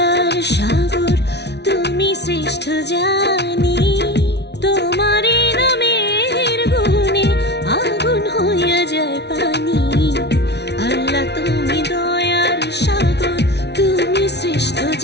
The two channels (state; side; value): late; right; 0.50 ms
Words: সাগর, তুমি শ্রেষ্ঠ জানি। তোমার নামের গুণে আগুন হইয়া যায় পানি। আল্লাহ তুমি দয়ার সাগর, তুমি শ্রেষ্ঠ